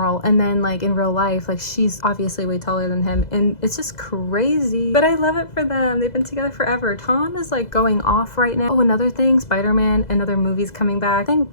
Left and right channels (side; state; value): right; late; 2.0 ms